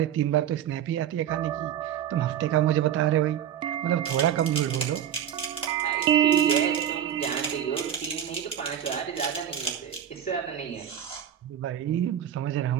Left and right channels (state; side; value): quieter; left; 9.9 dB